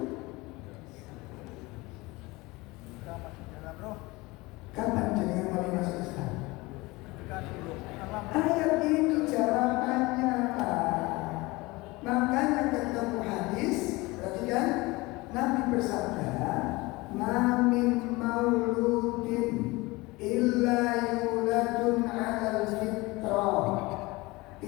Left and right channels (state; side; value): quieter; right; 22.5 dB